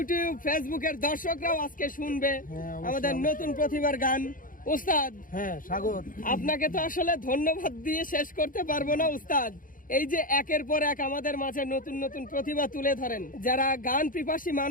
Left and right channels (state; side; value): late; right; 0.40 ms